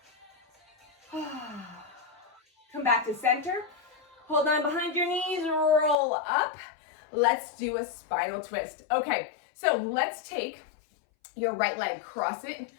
Come back to center. Hold on behind your knees, roll up. Let's do a spinal twist. Okay, so let's take your right leg, cross it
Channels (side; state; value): right; drops out; at 6.0 s